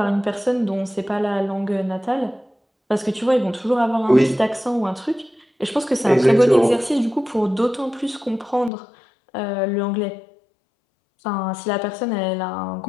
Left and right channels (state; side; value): drops out; right; at 8.7 s